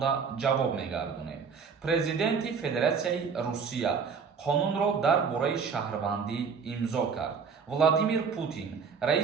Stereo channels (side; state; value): left; quieter; 5.9 dB